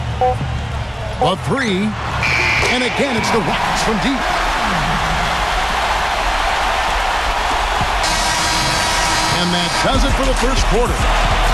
A 3. And again, it's the Rockets from deep. And that does it for the first quarter.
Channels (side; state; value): both; identical; correlation 1.00